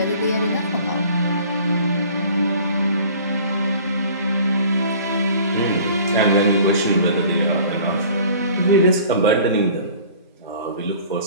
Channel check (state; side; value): inverted; both; correlation -0.48